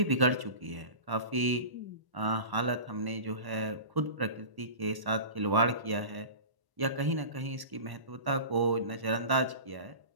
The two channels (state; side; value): late; left; 1.1 ms